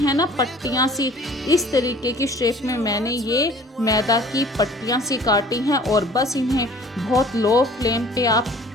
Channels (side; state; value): both; normal; correlation 0.50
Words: ना पट्टियाँ सी, इस तरीके की शेप में मैंने ये मैदा की पट्टियाँ सी काटी हैं। और बस इन्हें बहुत लो फ्लेम पे आप